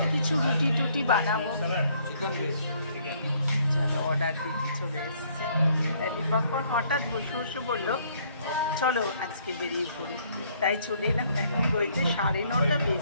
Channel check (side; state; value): both; inverted; correlation -0.64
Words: কিছু রুটি টুটি বানাবো। চলো অর্ডার দিতে চলে এসছে। দীপঙ্কর হঠাৎ বসে বসে বললো চলো আজকে বেরিয়ে পড়ি, তাই চলে এলাম। এখন বইতে 9:30